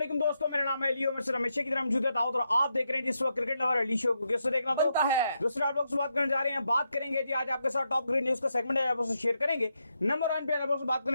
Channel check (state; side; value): inverted; both; correlation -0.82